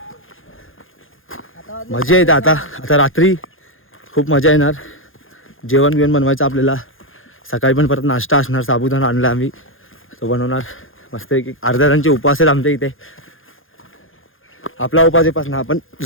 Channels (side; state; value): right; late; 0.59 ms